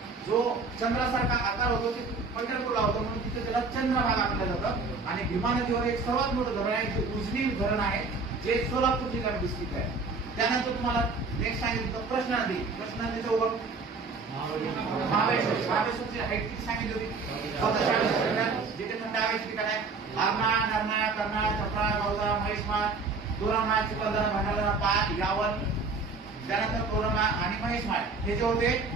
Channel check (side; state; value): left; quieter; 4.1 dB